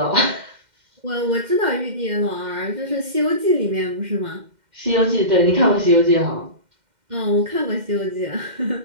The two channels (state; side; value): late; left; 2.1 ms